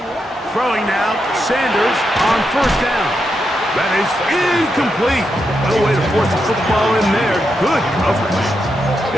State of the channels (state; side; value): normal; both; correlation 0.84